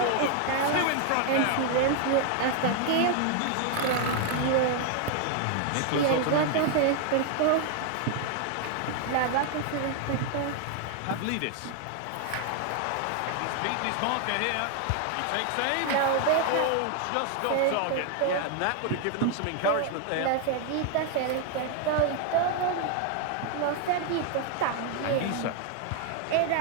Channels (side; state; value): both; different; correlation 0.00